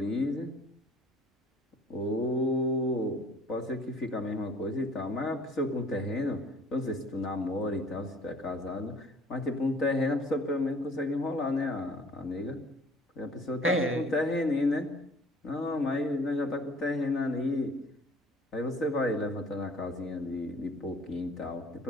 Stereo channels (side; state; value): both; normal; correlation 0.53